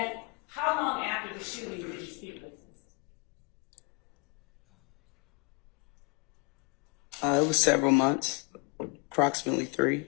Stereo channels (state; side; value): quieter; right; 30.3 dB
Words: how long after the shooting did you speak with him? It was several months, approximately 3.